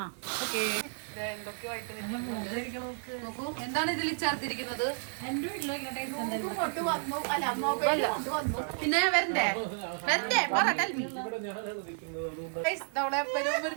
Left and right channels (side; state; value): left; silent; 56 dB below the other